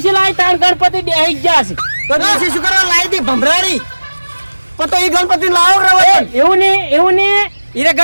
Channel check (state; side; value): inverted; both; correlation -1.00